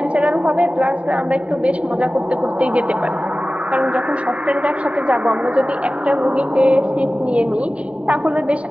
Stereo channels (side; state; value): left; late; 0.064 ms